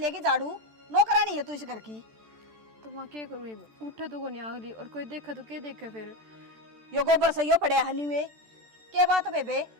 झाड़ू। नौकरानी है तू इस घर की। तो माँ क्या करूँ, उठे तो को नहीं आगली और कोई देखा तो क्या देखे फिर। यो गोबर सही पड़े हनी में के बात बेबे,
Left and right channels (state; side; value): late; left; 14 ms